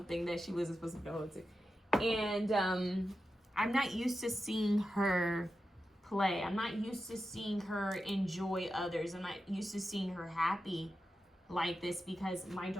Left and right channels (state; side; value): normal; both; correlation 0.91